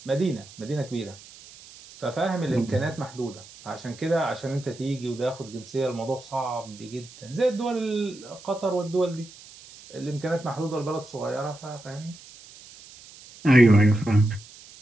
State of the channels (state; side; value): noise; right; hiss, 20 dB below the sound